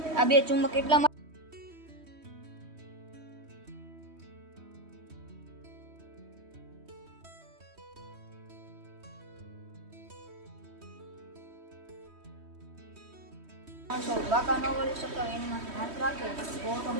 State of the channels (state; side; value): late; left; 3.1 ms